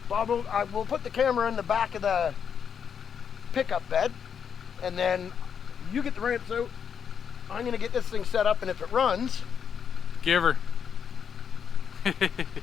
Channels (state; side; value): quieter; right; 7.4 dB